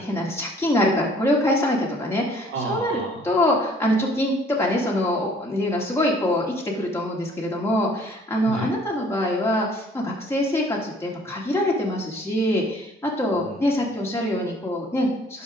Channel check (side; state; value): both; normal; correlation 0.57